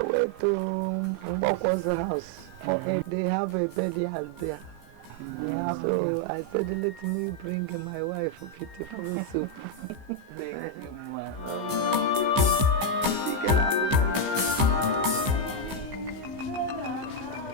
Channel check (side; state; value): left; late; 15 ms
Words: way to Mbokwa's house. They have a bed there. So I said, let me bring my wife a beautiful soup. Thank you, ma.